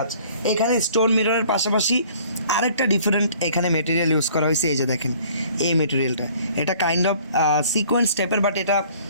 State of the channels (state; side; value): inverted; both; correlation -0.55